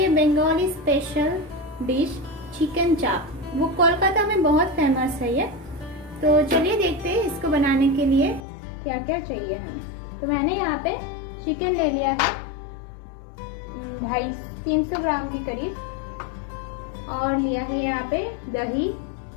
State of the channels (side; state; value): right; drops out; at 8.4 s